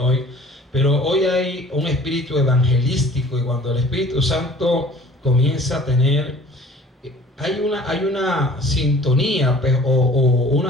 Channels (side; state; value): both; normal; correlation 0.49